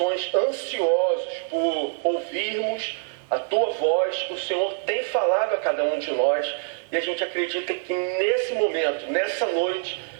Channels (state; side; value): silent; left; digital silence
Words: ansiosos por ouvirmos a tua voz, o Senhor tem falado a cada um de nós, e a gente acredita que nesse momento, nessa noite,